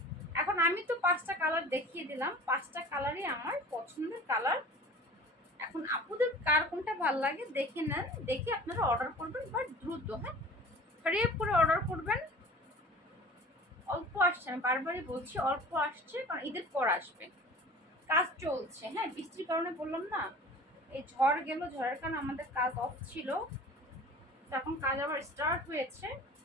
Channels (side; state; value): both; normal; correlation 0.42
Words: এখন আমি তো 5টা কালার দেখিয়ে দিলাম, 5টা কালারই আমার পছন্দের কালার। এখন আপুদের কার কোনটা ভালো লাগে দেখে নেন, দেখে আপনারা অর্ডার করবেন, বাট দ্রুত, হ্যাঁ হারিয়ে করে অর্ডার করবেন। অল্প আসছে, আমি বারবারই বলছি অল্প আসছে, কারণ ঈদের পর আসবে, কাজ চলছে। হ্যাঁ বৃষ্টির কারণে বললাম না, এই ঝড় গেল, ঝড়ের কারণে আমাদের কাজ অফ ছিল, এখন কাজ আবার স্টার্ট হয়েছে।